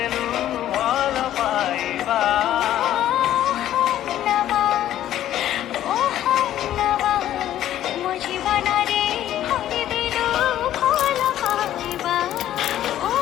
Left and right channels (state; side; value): quieter; right; 12.2 dB